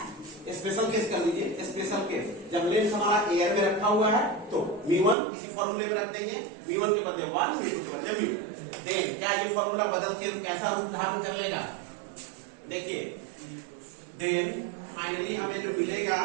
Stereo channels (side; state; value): left; drops out; at 5.2 s